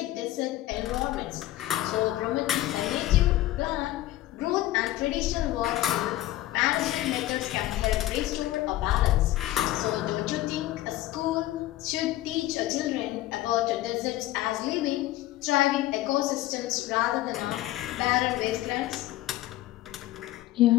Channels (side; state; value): right; quieter; 15.4 dB